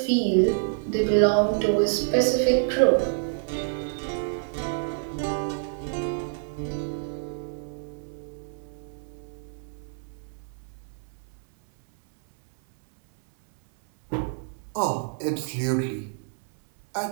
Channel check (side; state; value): left; silent; 60 dB below the other